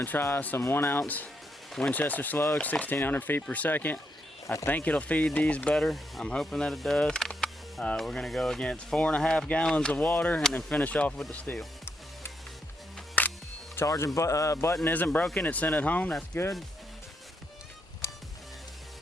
try some 1 ounce Winchester Slug, 1600 feet per second. I think it'll feed these better. I'm hoping that it does. We're gonna go against 4.5 gallons of water and then finish off with the steel. Charging button isn't broken, it's sent it home, that's good.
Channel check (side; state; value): both; normal; correlation 0.79